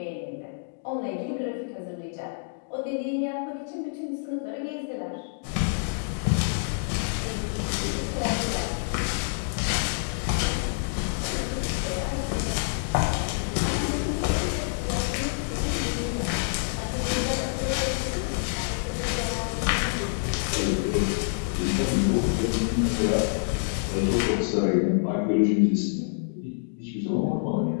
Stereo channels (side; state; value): right; silent; digital silence